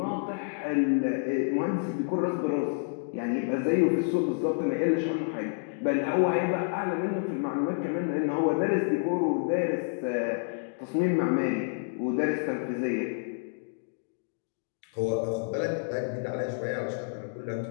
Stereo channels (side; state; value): right; silent; digital silence